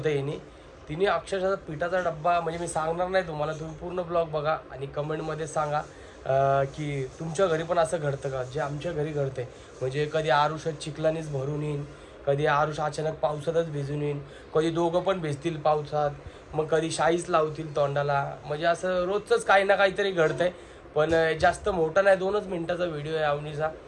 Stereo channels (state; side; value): identical; both; correlation 1.00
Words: यांनी. तिने अक्षरशः पिठाचा डब्बा, म्हणजे मी सांगणार नाही तुम्हाला, तुम्ही पूर्ण ब्लॉग बघा आणि कमेंटमध्ये सांगा की तुमच्या घरी पण असं घडतं का जे आमच्या घरी घडतंय. म्हणजे कधी आरुषात चिखलानीच भरून येईन, कधी आरुष अचानक पावसातच भिजून येईन, कधी दोघं पण भिजतील पावसात, मग कधी शाईच लावतील तोंडाला. म्हणजे असं रोजचंच काही ना काहीतरी घडतंय. पण जास्त मोठा नाही, 2च मिनिटाचा व्हिडिओ आहे अवनीचा.